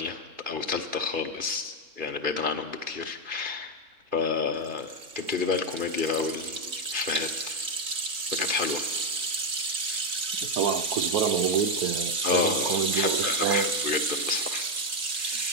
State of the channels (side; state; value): left; late; 3.9 ms